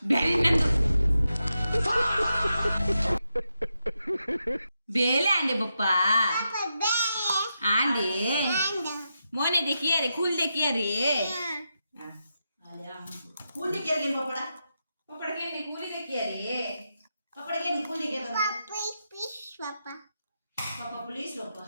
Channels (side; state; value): both; inverted; correlation -0.86